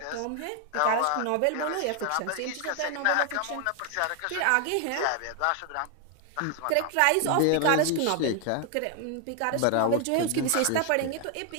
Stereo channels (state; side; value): different; both; correlation 0.00